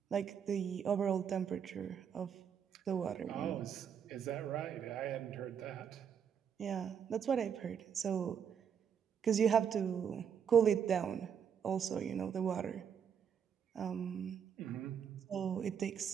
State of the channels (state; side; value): quieter; left; 7.8 dB